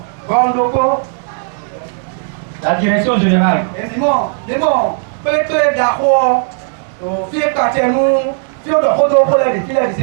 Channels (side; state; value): left; silent; 60 dB below the other